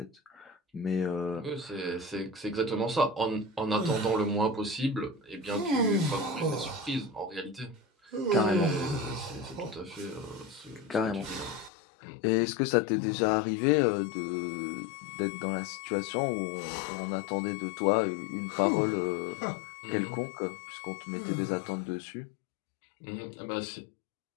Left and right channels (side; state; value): right; drops out; at 11.7 s